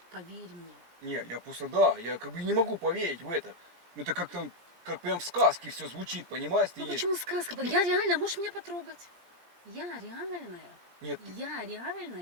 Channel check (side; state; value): left; late; 17 ms